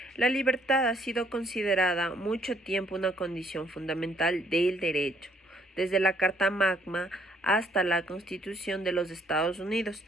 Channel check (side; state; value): both; normal; correlation 0.65